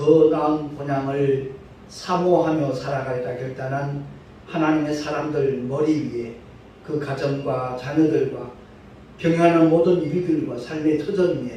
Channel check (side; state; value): both; identical; correlation 1.00